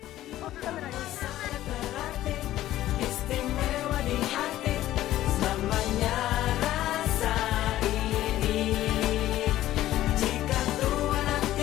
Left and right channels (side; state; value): right; quieter; 14.1 dB